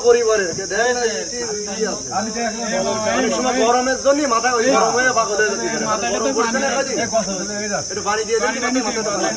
পরিবারের গরমের জন্য মাথায় ওই গরম হয়ে পাগল হয়ে যেতে পারে। গরম পড়ছে না, একটু পানি দিয়ে দেন,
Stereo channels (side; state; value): both; identical; correlation 1.00